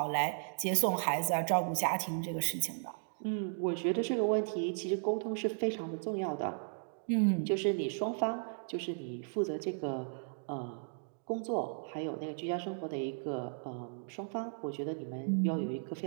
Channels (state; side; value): silent; left; digital silence